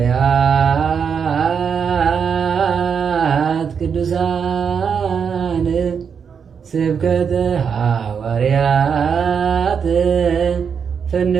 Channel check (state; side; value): quieter; left; 6.7 dB